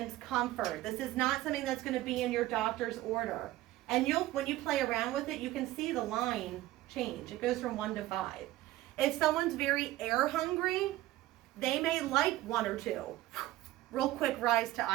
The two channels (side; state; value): left; quieter; 16.3 dB